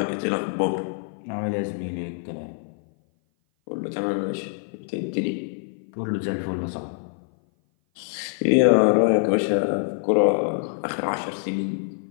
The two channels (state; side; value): silent; right; 56 dB below the other